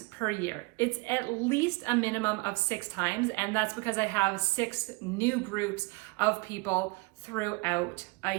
per year. It's at least a minimum of 6 times, and that's because I have 6 new groups of people throughout a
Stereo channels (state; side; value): quieter; left; 26.1 dB